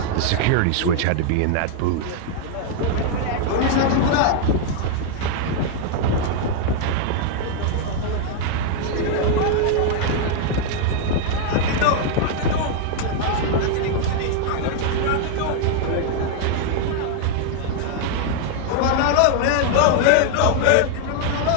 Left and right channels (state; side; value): different; both; correlation 0.00